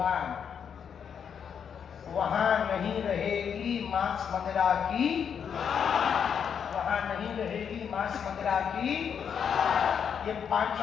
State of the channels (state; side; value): quieter; right; 7.5 dB